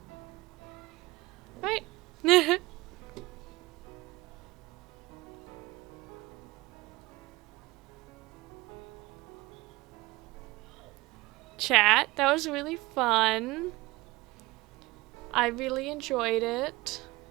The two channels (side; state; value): left; quieter; 21.0 dB